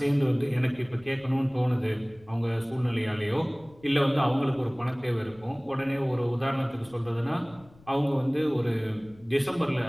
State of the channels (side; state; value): left; noise; rumble, 26 dB below the sound